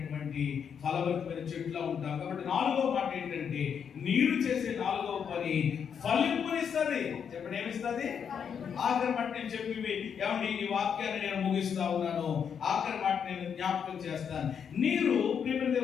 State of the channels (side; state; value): right; quieter; 7.4 dB